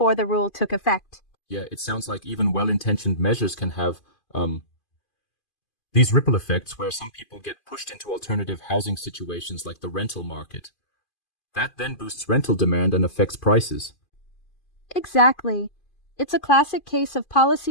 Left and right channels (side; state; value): right; late; 2.5 ms